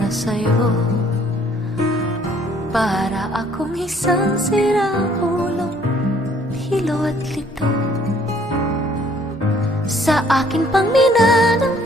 sa'yo. Para akong isang siraulo, hilo at lito. Sa akin pang mina ng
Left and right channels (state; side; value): normal; both; correlation 0.61